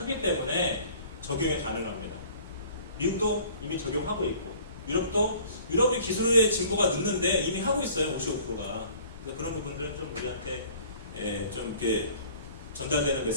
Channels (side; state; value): both; inverted; correlation -0.51